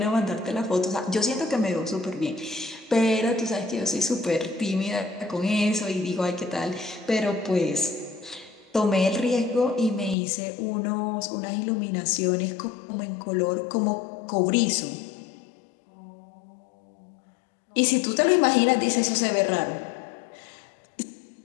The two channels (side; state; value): right; drops out; at 10.2 s